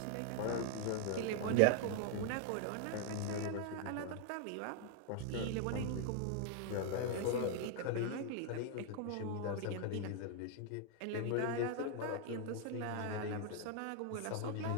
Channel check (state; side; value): different; both; correlation 0.00